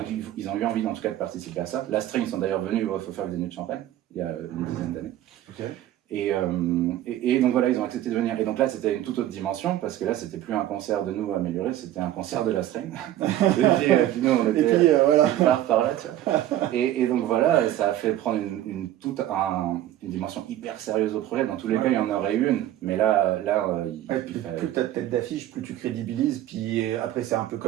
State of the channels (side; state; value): left; quieter; 13.1 dB